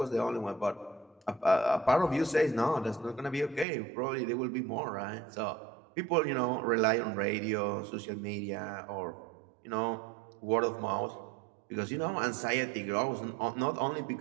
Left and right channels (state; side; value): drops out; left; at 3.7 s